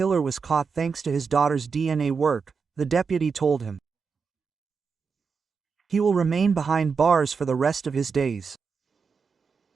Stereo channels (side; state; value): left; quieter; 5.5 dB